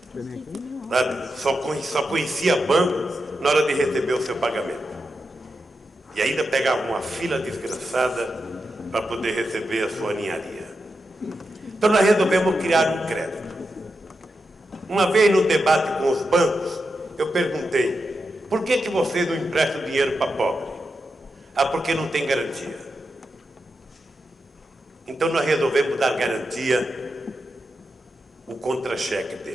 sabe, só conhecia banco na hora de receber o seu pagamento. E ainda pegava uma fila desgraçada para poder receber a sua ninharia. Então nós resolvemos criar um crédito. Uma vez no debate com os bancos, eu perguntei, por que vocês não emprestam dinheiro para pobre? Ah, porque não tem garantia. Então nós resolvemos dar garantia, o contra-cheque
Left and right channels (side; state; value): both; normal; correlation 0.87